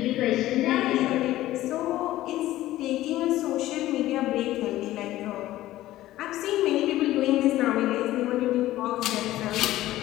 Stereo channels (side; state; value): right; quieter; 15.3 dB